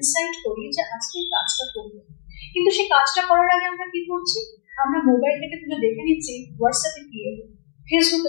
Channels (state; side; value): silent; right; digital silence